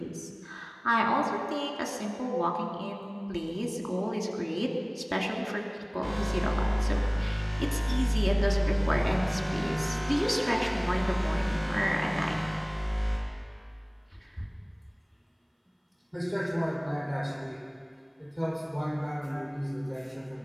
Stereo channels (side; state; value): both; identical; correlation 1.00